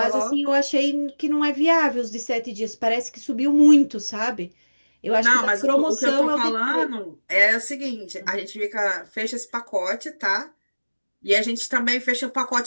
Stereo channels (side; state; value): both; inverted; correlation -1.00